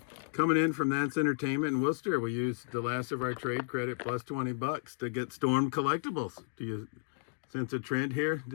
Coming in from That's Entertainment in Worcester, we used the last of our trade credit plus 20 bucks to get Storm Collectibles. Do you sense a trend here?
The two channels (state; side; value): silent; right; digital silence